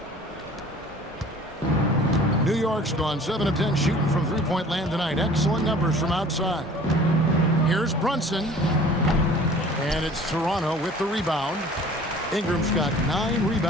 New York's gone 7 of 10 shooting from three-point land tonight. Excellent numbers from outside. Here's Brunson. And it's Toronto with the rebound. Ingram's got 9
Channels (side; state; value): both; normal; correlation 0.47